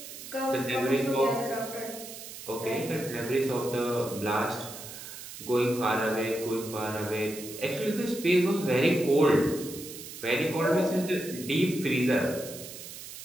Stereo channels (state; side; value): noise; right; hiss, 12 dB below the sound